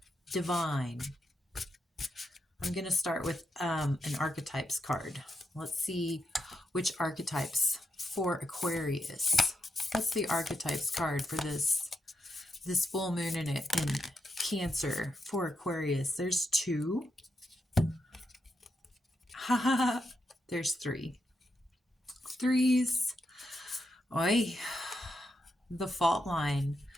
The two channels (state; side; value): normal; both; correlation 0.83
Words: Divine. I'm going to start with an archetypes card. Let's see which archetypes for Aquarius. What's the archetypes card for this full moon in Cancer for Aquarius? There's 2. There's 3. Threes. Oi. The fault line,